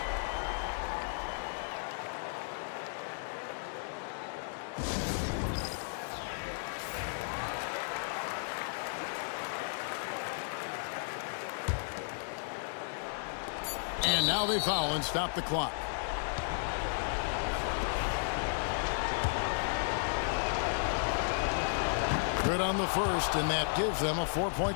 And now they foul and stop the clock. Good on the first, and that gives them a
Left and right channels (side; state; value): right; silent; 55 dB below the other